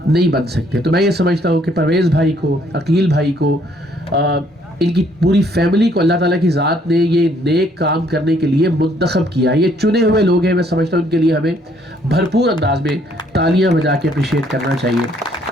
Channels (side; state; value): both; normal; correlation 0.65